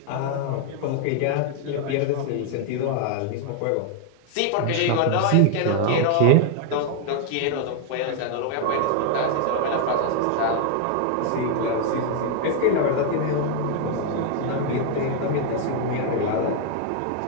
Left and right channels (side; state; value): both; different; correlation 0.00